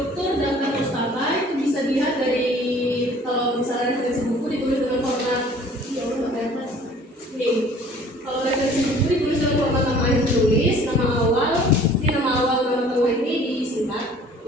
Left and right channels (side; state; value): both; normal; correlation 0.52